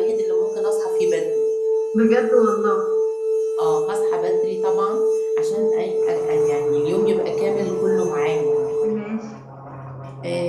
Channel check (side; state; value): both; identical; correlation 1.00